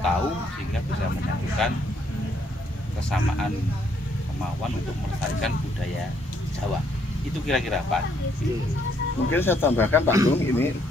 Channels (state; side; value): normal; both; correlation 0.70